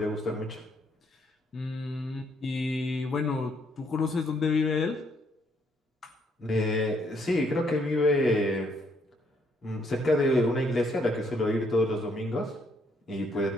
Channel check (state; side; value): normal; both; correlation 0.70